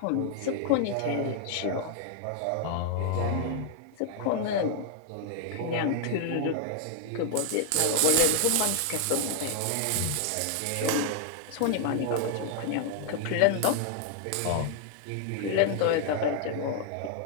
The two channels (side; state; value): both; different; correlation 0.00